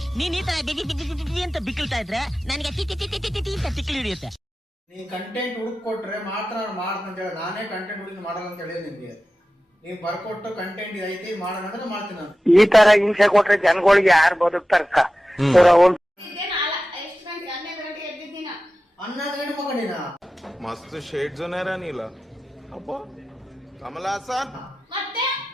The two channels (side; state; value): both; normal; correlation 0.94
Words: ನೀನ್ ಈ ತರ ಅಂತ ಬಿಕ್ಕಳ್ತಾ ಇದ್ರೆ ನನಗೆ ತಿಕ್ಕಿ ಹಿಡಿಯುತ್ತೆ. ನೀ ಕಂಟೆಂಟ್ ಹುಡುಕೊಟ್ರೆ ಮಾತ್ರ ನಾನು ಮಾಡ್ತೀನಿ ಅಂತ ಹೇಳಿ, ನಾನೇ ಕಂಟೆಂಟ್ ಹುಡುಕಿ ಮಾಡಲ್ಲ ಅಂತ ಹೇಳಿದ್ ನಿಮ್ಗೆ. ನೀವು ಬರ್ಕೊಟ್ಟು ಕಂಟೆಂಟ್ ಇದೈತಿ ಮಾಡೋಣ ಅಂದ್ರೆ ಮಾಡ್ತೀನಿ ನಾನು. ಈ ತರ ಹಿಂಸೆ ಕೊಟ್ರೆ ಜನಗಳಿಗೆ ಯಾರು ಬದುಕ್ತಾರಕ್ಕ? 11 ಗಂಟೆ ಮಕ್ಕಳಿನ मस्त शेड जो नाही राणीला अप्पा कमला असा ಮತ್ತೆ